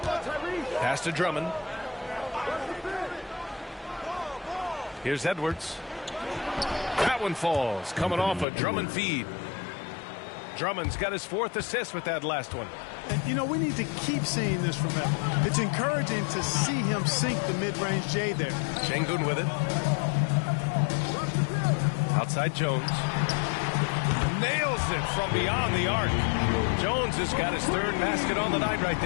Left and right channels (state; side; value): drops out; right; at 8.5 s